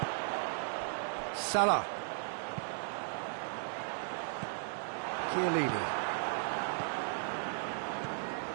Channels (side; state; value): left; silent; 54 dB below the other